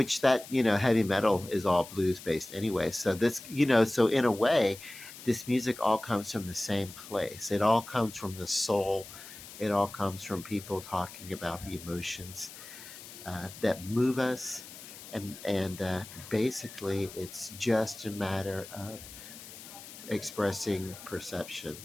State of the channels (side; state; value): left; noise; hiss, 15 dB below the sound